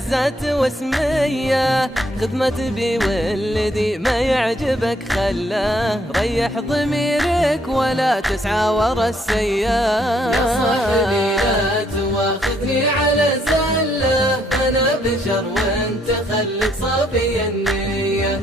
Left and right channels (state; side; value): normal; both; correlation 0.70